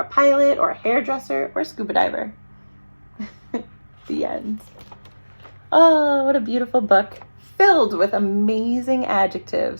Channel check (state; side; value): inverted; both; correlation -1.00